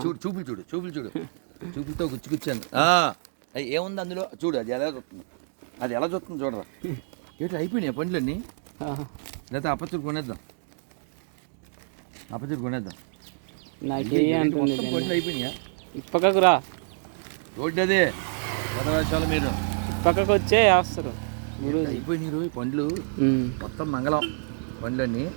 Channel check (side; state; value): left; silent; digital silence